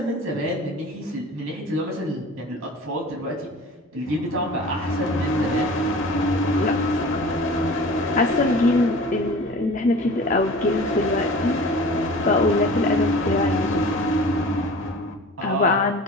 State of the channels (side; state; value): both; normal; correlation 0.41